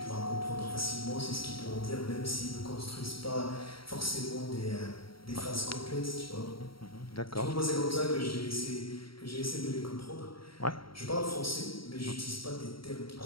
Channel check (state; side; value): late; right; 0.74 ms